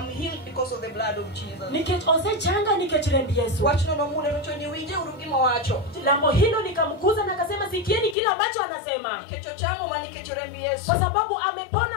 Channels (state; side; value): drops out; right; at 8.2 s